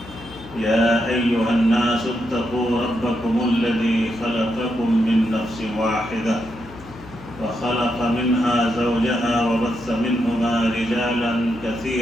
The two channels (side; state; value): left; noise; hum, 18 dB below the sound